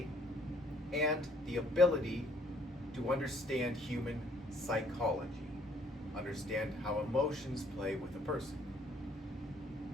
and the ability to understand human psychology, understand how emotions play with a person.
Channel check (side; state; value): both; normal; correlation 0.63